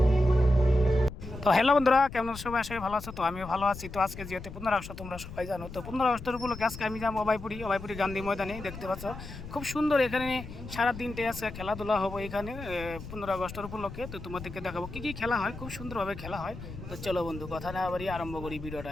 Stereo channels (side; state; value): left; noise; rumble, 12 dB below the sound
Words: হ্যালো বন্ধুরা, কেমন সবাই? আসলে ভালো আছো? তো আমিও ভালো আছি। তো আজকে যেহেতু 15 আগস্ট তোমরা সবাই জানো, তো 15 আগস্টের উপলক্ষে আজকে আমি যাবো অভয়পুরি গান্ধী ময়দানে। দেখতে পাচ্ছ খুব সুন্দর, এখানে সারা দিনটে আছে খেলাধুলা হবে এখানে 15 আগস্টের উপলক্ষে। তো তোমাদেরকে দেখাবো কী কী খেলা হয়, খুব সুন্দরভাবে খেলা হয়। তো চলো বন্ধু, কথা না বাড়িয়ে আরম্ভ করি ভিডিওটা